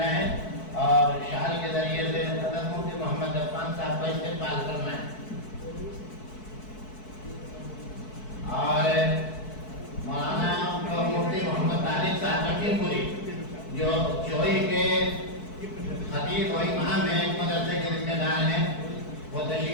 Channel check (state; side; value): late; right; 4.6 ms